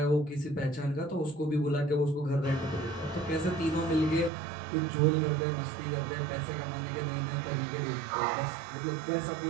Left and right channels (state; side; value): drops out; left; at 4.3 s